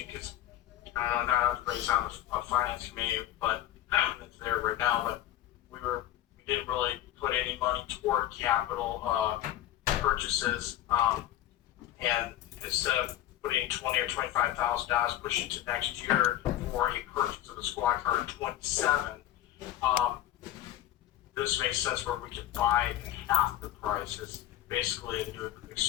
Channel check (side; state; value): right; quieter; 13.0 dB